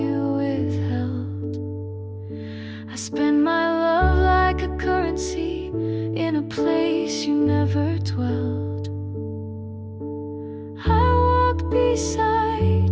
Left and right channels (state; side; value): identical; both; correlation 1.00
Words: withheld. I spend my love like a currency in a place you never dwelled. I walked beside